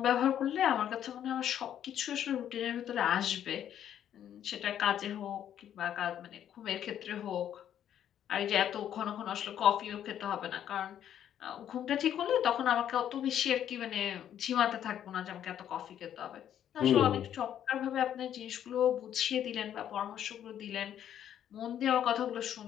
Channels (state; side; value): quieter; right; 10.2 dB